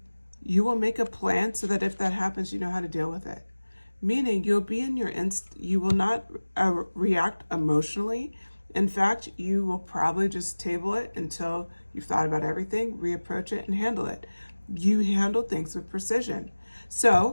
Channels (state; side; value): inverted; both; correlation -1.00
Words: you will make a plan so that if that happens, you know how to deal with it. Meaning you'll be in your you will not react emotionally. In fact, you will probably just table it until you've thought about everything, reapproach it, and handle it. You handle things with precision.